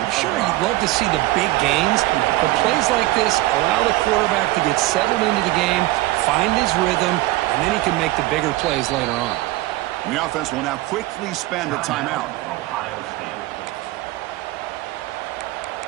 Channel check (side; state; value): left; quieter; 18.3 dB